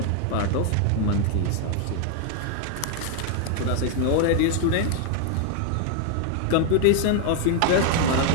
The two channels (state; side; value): different; both; correlation 0.00